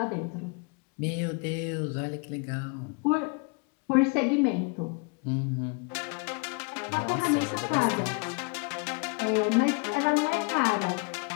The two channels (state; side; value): quieter; right; 32.5 dB